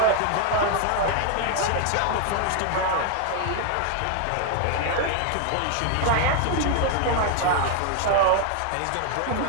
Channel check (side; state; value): both; different; correlation 0.00